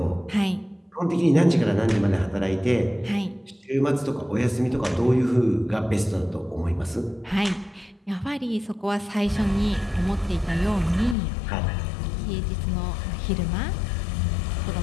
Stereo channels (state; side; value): drops out; right; at 11.2 s